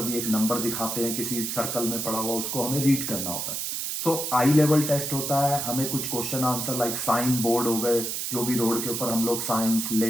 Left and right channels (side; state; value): right; noise; hiss, 3 dB below the sound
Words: भी एक नंबर दिखाते हैं किसी सर्कल में पड़ा हुआ, उसको हमें रीड करना होता है. आई लेवल टेस्ट होता है, हमें कुछ question answer like sign board हो गए, जो भी रोड के ऊपर हम लोग साइंस